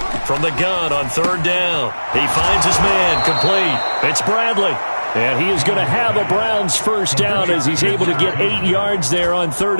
from the gun on 3rd down. He finds his man, complete. It's Bradley. And he is going to have a Browns first down as he's able to get 8 yards there on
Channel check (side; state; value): both; inverted; correlation -1.00